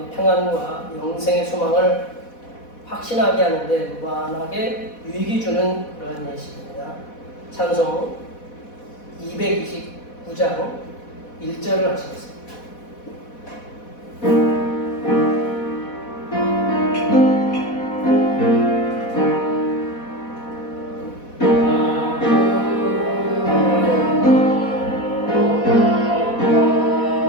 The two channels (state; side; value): late; right; 4.1 ms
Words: 평안과 영생의 소망을 확신하게 하는데 무한하게 유익이 주는 그런 예식입니다. 찬송 229장 1절을 하시겠습니다.